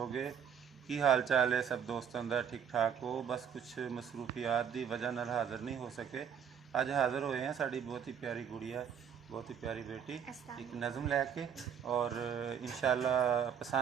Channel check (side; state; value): left; quieter; 7.9 dB